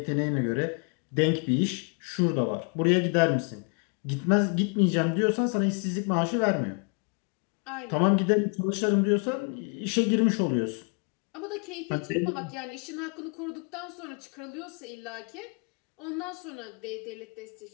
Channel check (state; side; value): quieter; right; 36.9 dB